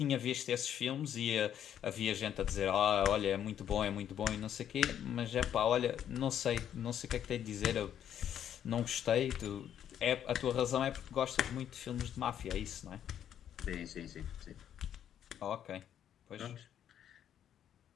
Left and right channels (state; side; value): quieter; right; 9.9 dB